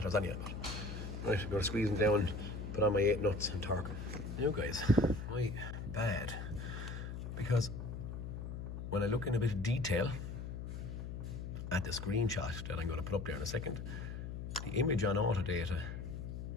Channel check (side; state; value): left; noise; hum, 6 dB below the sound